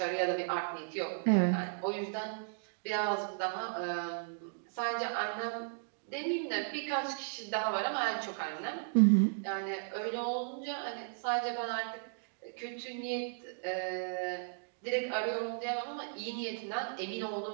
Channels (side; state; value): left; silent; digital silence